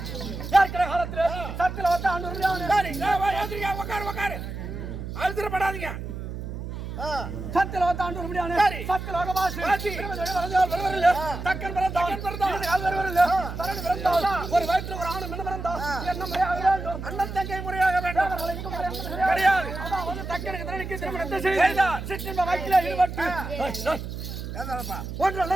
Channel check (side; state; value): right; noise; hum, 7 dB below the sound